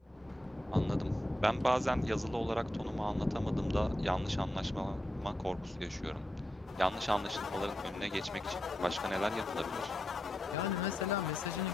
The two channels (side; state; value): both; normal; correlation 0.86